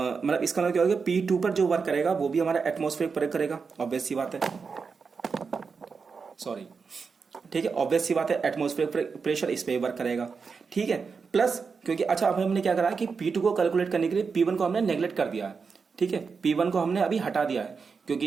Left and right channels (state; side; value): quieter; left; 5.2 dB